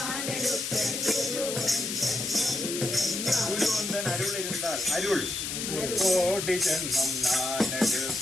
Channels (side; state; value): left; noise; hiss, 4 dB below the sound